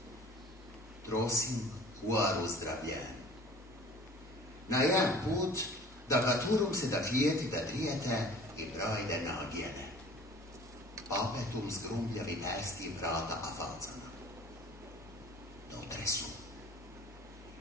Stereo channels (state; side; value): normal; both; correlation 0.47